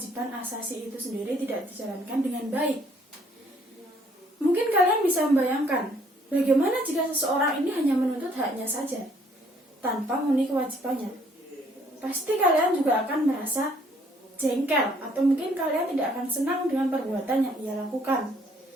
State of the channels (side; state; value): both; normal; correlation 0.64